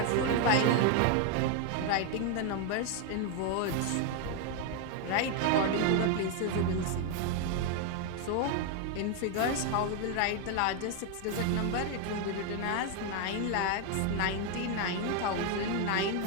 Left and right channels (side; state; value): both; different; correlation 0.01